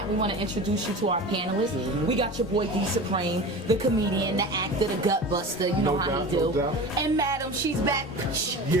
we want to introduce you to our panelists. We got your boy D Supreme, the comedian, the actor, the gut buster. You know how he do. And Madam, she's back.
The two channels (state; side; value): normal; both; correlation 0.33